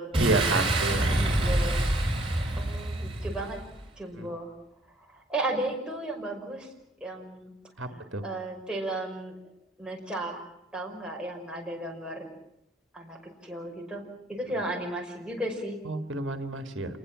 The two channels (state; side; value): normal; both; correlation 0.59